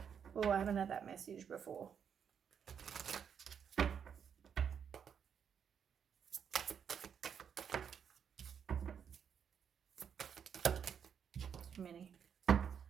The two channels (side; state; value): left; quieter; 7.6 dB